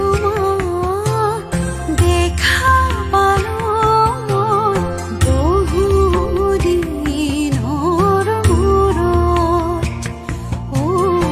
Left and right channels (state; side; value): identical; both; correlation 1.00